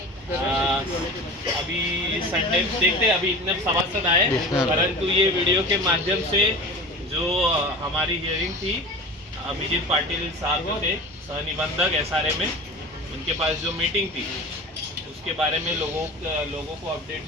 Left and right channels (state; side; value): normal; both; correlation 0.33